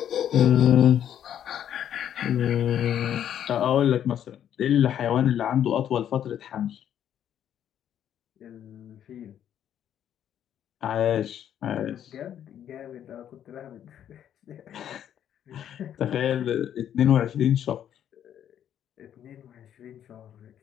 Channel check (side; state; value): right; quieter; 10.1 dB